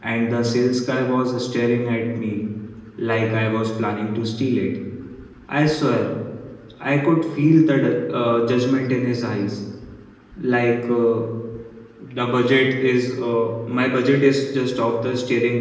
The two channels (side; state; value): both; identical; correlation 1.00